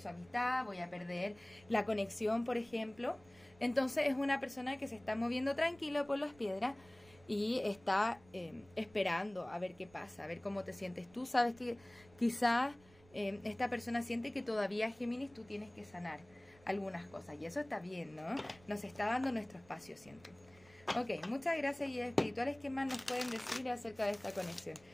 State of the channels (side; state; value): right; noise; rumble, 26 dB below the sound